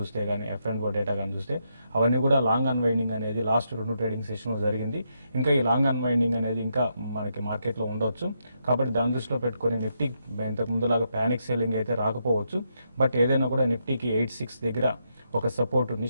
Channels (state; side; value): inverted; both; correlation -0.80